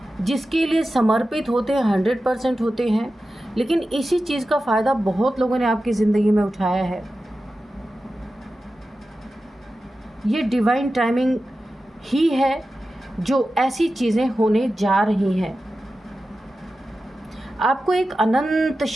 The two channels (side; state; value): both; normal; correlation 0.93